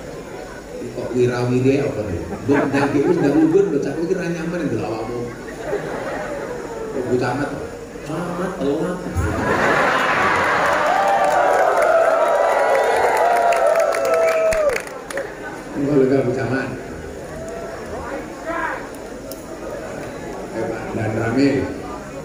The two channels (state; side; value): identical; both; correlation 1.00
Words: Kok wirawiri apa nih? Buk daging itu nggak ubun, bocah itu kira nyaman yang dilawamu. Bocah amat, amat telat. Enggak lega bocah amat. Pak dan Ramil,